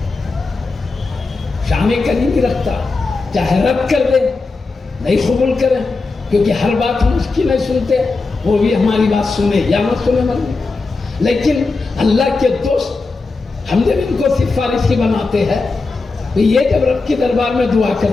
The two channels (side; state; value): right; quieter; 3.8 dB